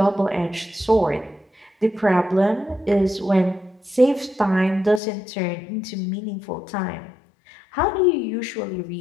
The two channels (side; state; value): right; drops out; at 5.0 s